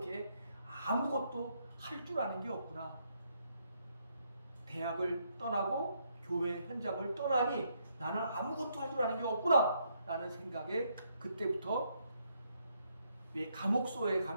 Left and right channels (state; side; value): inverted; both; correlation -0.75